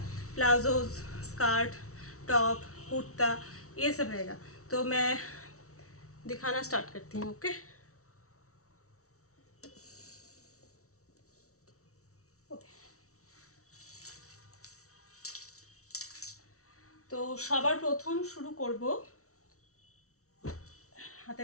प्लाजोज, स्कर्ट, टॉप, कुर्ता, ये सब रहेगा। तो मैं दिखाना स्टार्ट करती हूँ। ओके, তো সবার প্রথম শুরু করব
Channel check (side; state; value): right; late; 0.64 ms